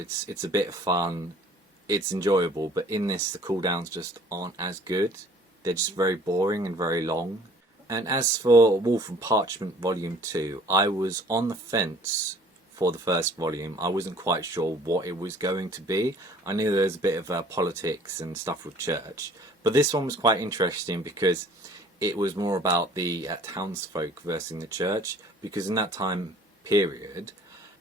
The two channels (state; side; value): normal; both; correlation 0.53